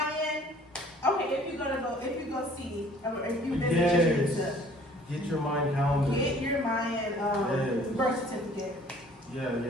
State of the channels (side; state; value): both; normal; correlation 0.54